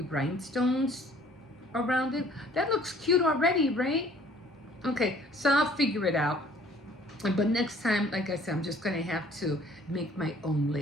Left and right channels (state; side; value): normal; both; correlation 0.56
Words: rhinestones around it. That looks cute already, right? Okay, so I'll figure it out. But next time, like I said, I'm just going to have to make my own